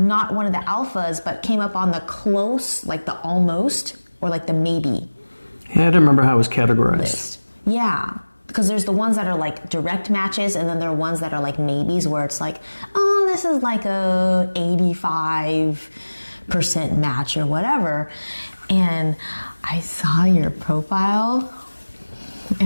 one of the alphas, but came up on the close, like the almost, or like the maybe. Yeah, I don't remember how it was categorized. List. Yeah. Because there's the ones that are like direct matches, and then there are ones that are like maybes, where it's like, oh, this is like a 85% match or whatever. And I saw your profile,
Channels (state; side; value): inverted; both; correlation -1.00